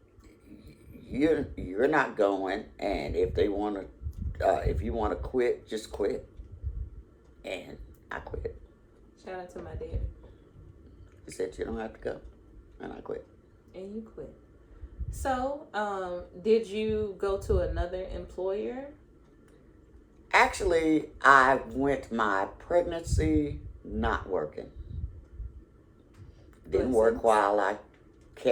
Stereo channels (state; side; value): identical; both; correlation 1.00